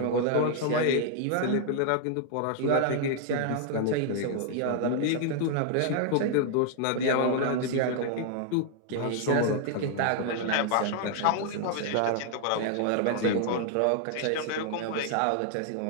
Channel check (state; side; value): different; both; correlation 0.00